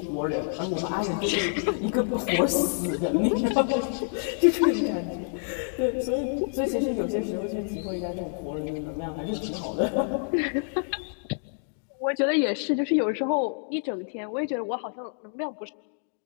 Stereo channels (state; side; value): silent; right; digital silence